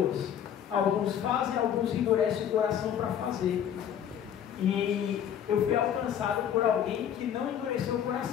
Alguns fazem, alguns endurecem o coração para fazer. E eu fui alcançado por alguém que não endureceu o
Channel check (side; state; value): right; quieter; 9.3 dB